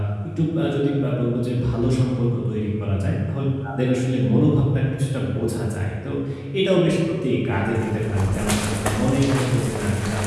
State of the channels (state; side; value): identical; both; correlation 1.00